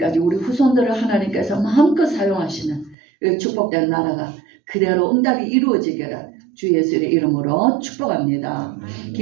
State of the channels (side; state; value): left; drops out; at 3.0 s